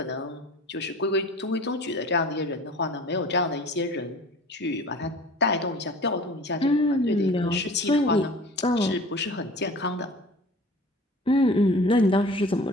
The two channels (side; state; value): both; normal; correlation 0.43